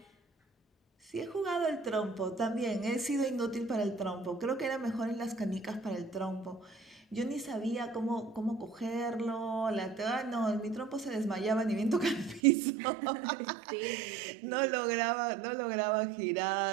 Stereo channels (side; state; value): left; drops out; at 12.4 s